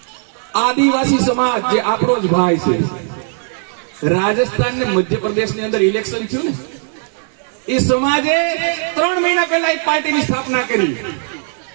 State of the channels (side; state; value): left; silent; 60 dB below the other